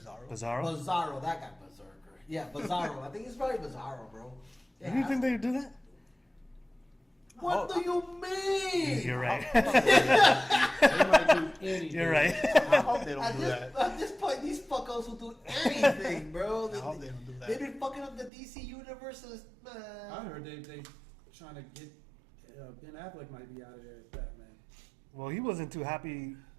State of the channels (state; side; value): drops out; left; at 18.3 s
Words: Bizarro? Bizarro, that guy Berserker. Yeah, Bizarro. I think it's probably Bizarro, bro. Yeah, You think they would do that? what do you mean? You're right. They might do anything. You're right. I hope they don't At do that. this point, these fuckos will do anything, bro. I hope they don't do that. They've been fucking up the DC universes, I man. heard they trying to get Ben Affleck might be out of there as Batman. Well, he wasn't too happy